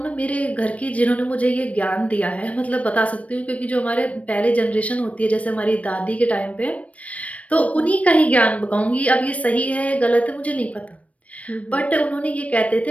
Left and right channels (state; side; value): late; right; 0.066 ms